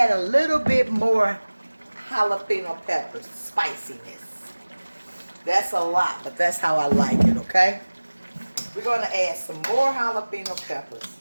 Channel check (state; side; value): inverted; both; correlation -1.00